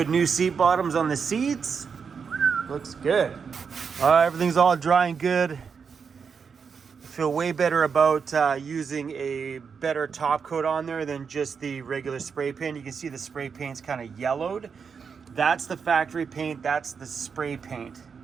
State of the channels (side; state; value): left; quieter; 6.1 dB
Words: new seat bottoms on the seats. Looks good. Everything's all dry and good. I feel way better about using a better top coat on there than just the regular spray paint. You can see the spray paint's kind of yellowed. That's the factory paint, that's the spray paint.